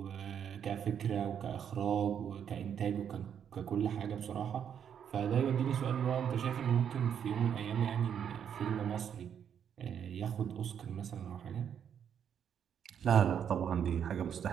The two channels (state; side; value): quieter; left; 8.4 dB